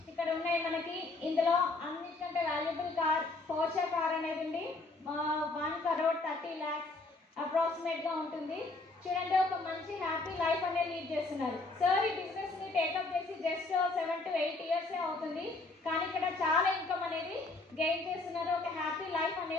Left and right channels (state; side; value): quieter; right; 3.3 dB